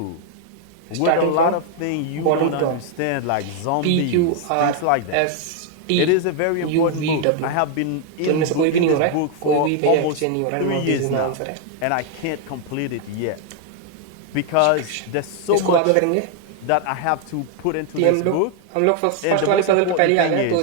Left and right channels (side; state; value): both; different; correlation 0.00